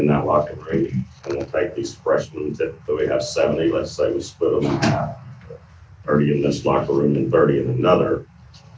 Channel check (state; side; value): identical; both; correlation 1.00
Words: that locker room, and we'll take these freshmen, typically we have 70, let's say we split them in half, 30 in this locker room and 30 in another.